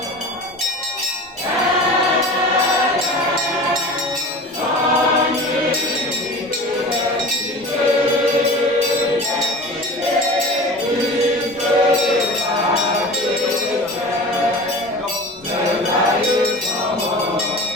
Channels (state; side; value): normal; both; correlation 0.36